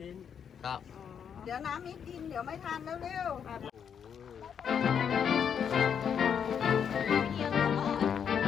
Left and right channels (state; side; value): quieter; right; 7.7 dB